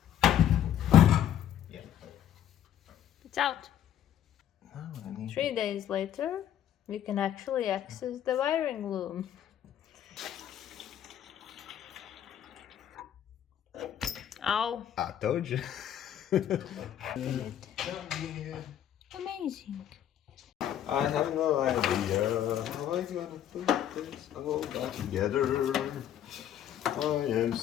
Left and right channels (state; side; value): quieter; right; 10.6 dB